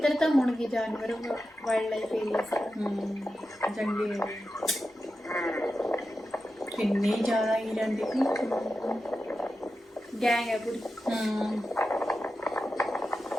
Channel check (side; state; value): both; normal; correlation 0.91